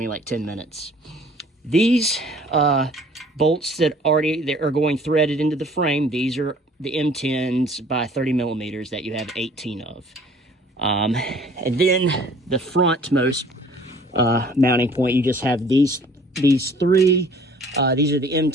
like 10 minutes. These bolts that are going threaded into the frame, these are the M10s by 30 millimeters that you have 18 of. And then the frontmost mounting point, you just have these 3. These are the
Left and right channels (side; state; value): both; normal; correlation 0.53